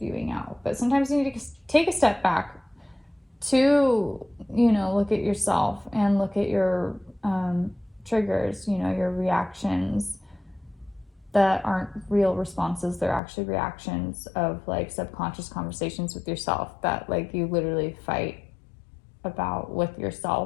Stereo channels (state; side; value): drops out; right; at 13.2 s